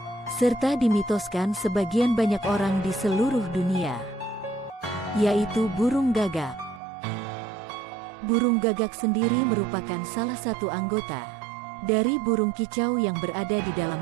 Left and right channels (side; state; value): left; drops out; at 6.8 s